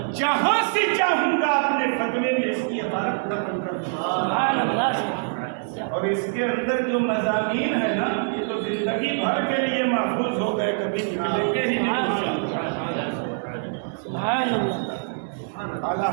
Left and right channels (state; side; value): silent; left; 62 dB below the other